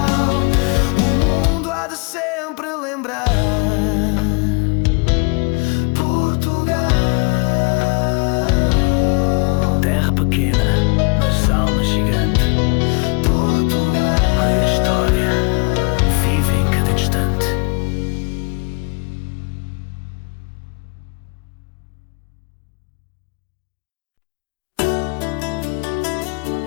o mundo há de sempre lembrar. Portugal, terra pequena, mas alma gigante. Portugal, a história vive em cada instante.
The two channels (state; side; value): quieter; right; 31.7 dB